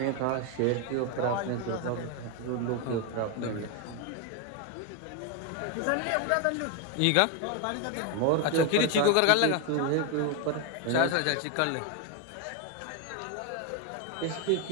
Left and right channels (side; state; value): both; different; correlation 0.01